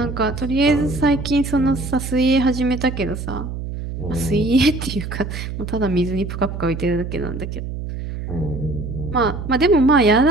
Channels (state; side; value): noise; right; hum, 7 dB below the sound